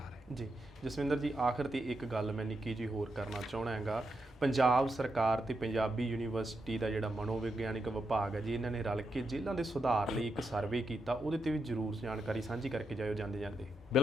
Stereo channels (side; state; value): both; normal; correlation 0.84